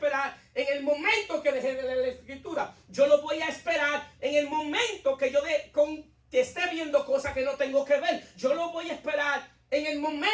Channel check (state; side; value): identical; both; correlation 1.00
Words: en el momento que deje de leer la escritura. Yo lo voy a esperar en el momento que que esté viendo cosas que no tengo que ver. Yo lo voy a esperar en el